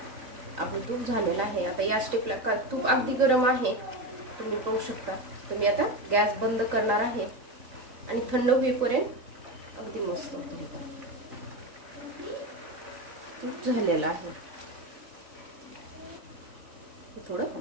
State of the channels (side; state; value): left; late; 3.9 ms